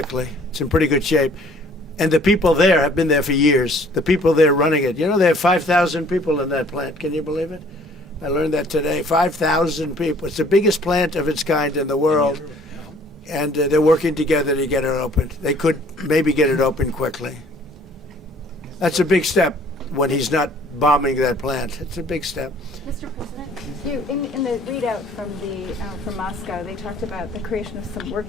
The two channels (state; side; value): normal; both; correlation 0.56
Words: It's in pretty good shape. And the people there have been there for years. The people there running it. You know, they have 5,000 people in that plant. Can you believe it? I learned that today. 5,000 people. It's the biggest plant of its kind in the world. And they're working together to get it opened. They could maybe get it open quickly. That's a big step when he's not bombing that plant. It's a big step. Mr. President, you in the readout from Moscow, they talked about the creation of some